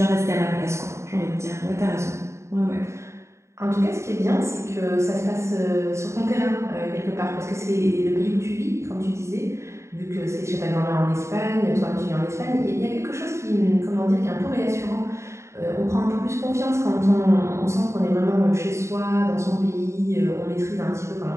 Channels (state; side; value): late; left; 0.14 ms